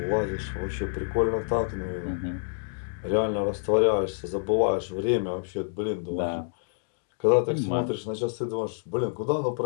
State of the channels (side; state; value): right; silent; digital silence